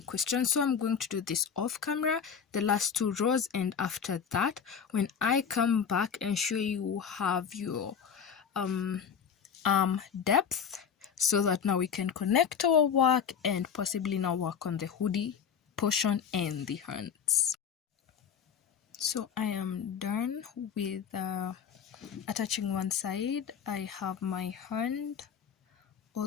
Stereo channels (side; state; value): right; quieter; 7.3 dB